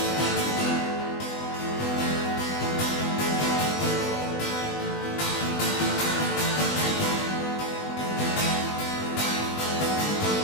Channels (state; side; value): late; right; 20 ms